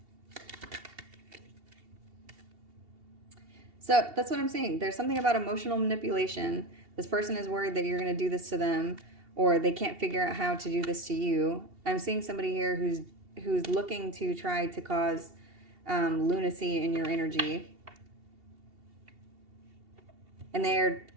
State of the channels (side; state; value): left; late; 2.7 ms